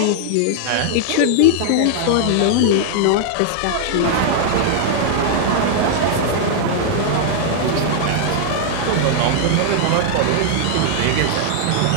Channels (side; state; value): both; different; correlation 0.00